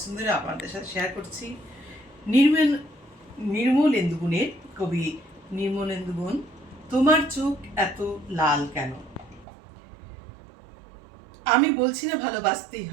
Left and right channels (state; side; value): drops out; left; at 9.5 s